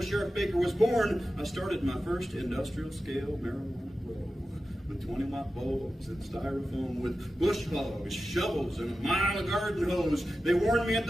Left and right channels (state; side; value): normal; both; correlation 0.93